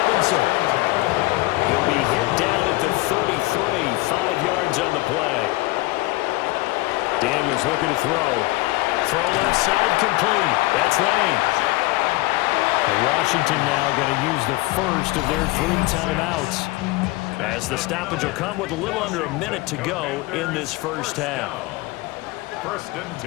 He'll be hit down at the 33, 5 yards on the play. Daniels looking to throw. Throw left side complete. That's Lane. Washington now going to use the first of their 3 timeouts, as the stoppage will come with a little under a minute to go in this first half. First and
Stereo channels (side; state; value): right; quieter; 21.0 dB